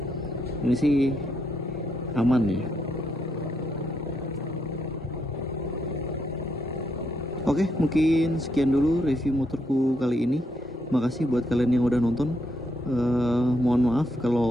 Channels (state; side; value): normal; both; correlation 0.78